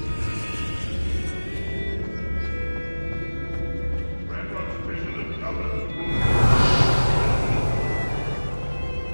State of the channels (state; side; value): inverted; both; correlation -1.00